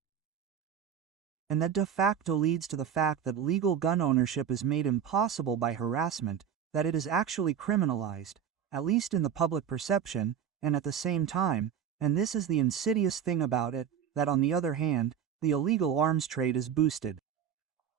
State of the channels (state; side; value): quieter; left; 8.6 dB